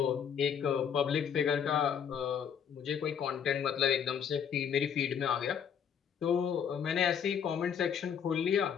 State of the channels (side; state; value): right; quieter; 7.9 dB